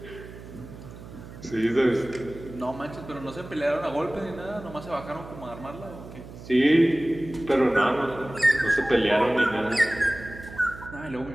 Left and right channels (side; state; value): right; noise; hum, 15 dB below the sound